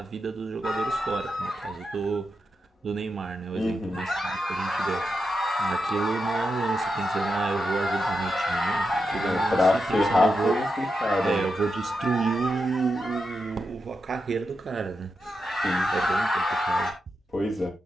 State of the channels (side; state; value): both; normal; correlation 0.87